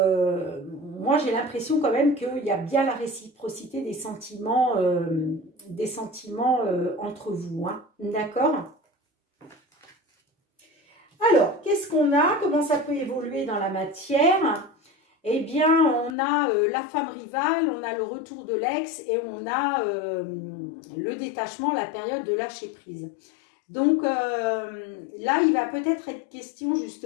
j'ai l'impression quand même qu'il y a bien la réciprocité des sentiments entre vous. Hein. D'accord? Alors, qu'est-ce qu'on a? Comment ça peut évoluer dans la matière? Eh bien, on a la femme rivale, on a le retour de l'ex et on a le détachement, la période de lâcher prise. Donc là, il va peut-être être question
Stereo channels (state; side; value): drops out; right; at 16.2 s